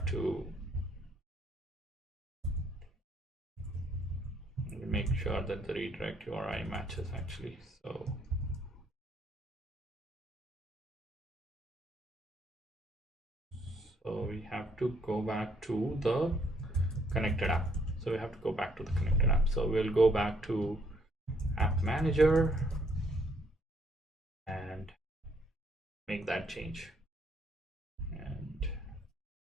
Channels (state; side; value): normal; both; correlation 0.68